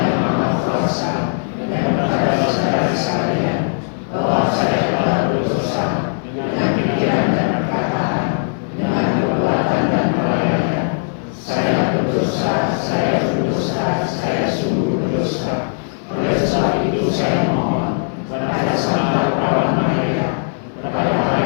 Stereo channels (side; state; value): right; silent; digital silence